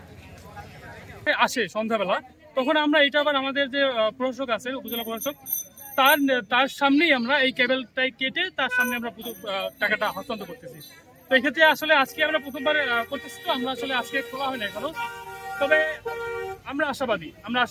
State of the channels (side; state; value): both; identical; correlation 1.00